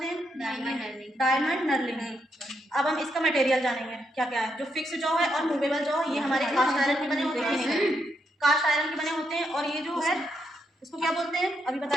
हैं? Diamond knurling. अब हम इसका मटेरियल जानेंगे क्या क्या है। जो फिक्स जॉ है और मूवेबल जॉ, ये हमारे कास्ट आयरन के बने होते हैं, कास्ट आयरन के बने होते हैं। और ये जो है इसको क्या बोलते हैं? अभी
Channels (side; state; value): both; normal; correlation 0.80